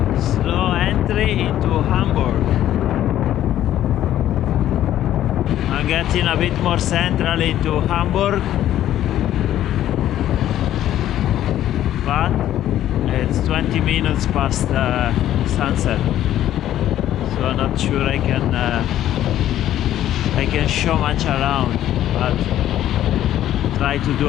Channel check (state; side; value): quieter; right; 12.3 dB